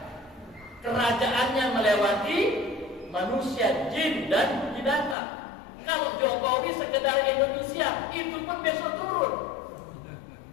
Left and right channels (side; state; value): right; drops out; at 5.2 s